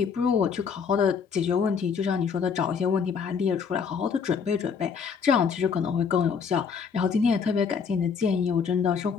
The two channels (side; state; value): right; quieter; 6.2 dB